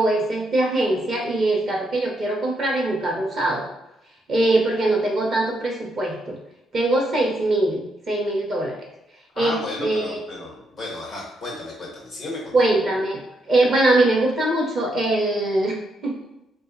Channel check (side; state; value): both; normal; correlation 0.79